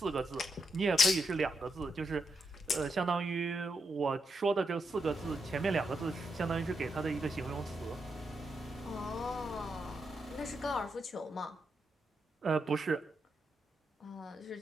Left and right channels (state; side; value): normal; both; correlation 0.83